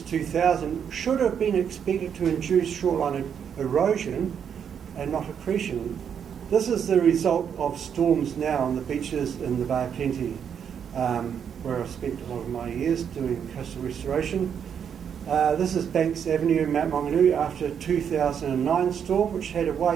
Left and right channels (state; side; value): quieter; left; 7.9 dB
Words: 2000 should have been expected to induce shoreline erosion and not accretion. This is the result of storms now on the beaches in the Bay of Plenty, where I've spent a lot of my years doing coastal restoration. This is Banks Avenue in Mount Maunganui after a 2009 storm, which had a